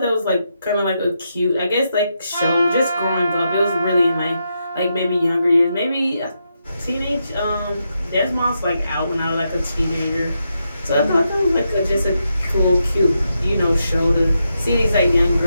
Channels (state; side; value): inverted; both; correlation -0.84